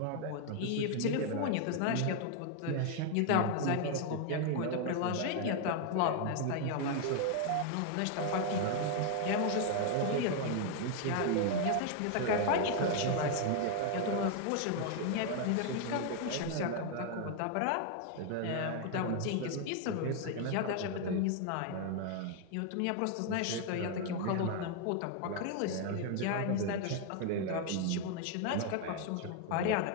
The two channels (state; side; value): different; both; correlation 0.00